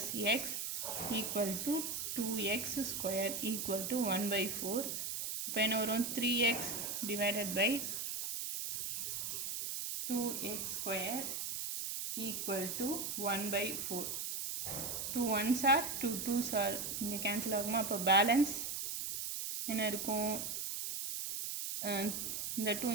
X equal to 2x square equal to 1/4. இப்போ என்ன வரும் 3x divided by 2x square equal to 1/4. 2 1s are 2 2s are இங்கே கேன்சல் ஆகுமா? அப்போ balance என்ன இருக்கும்? இந்த 2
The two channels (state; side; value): noise; right; hiss, 3 dB below the sound